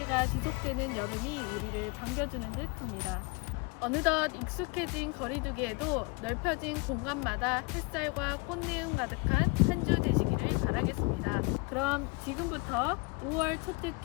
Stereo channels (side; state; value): right; quieter; 28.5 dB